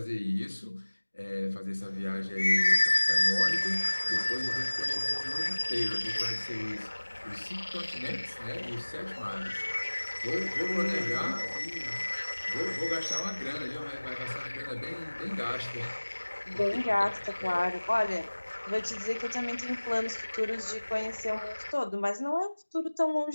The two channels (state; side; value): inverted; both; correlation -1.00